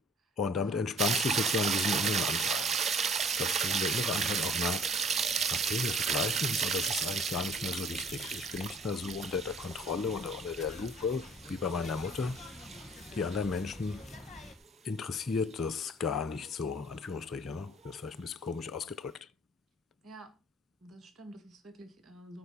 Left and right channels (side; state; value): both; normal; correlation 0.53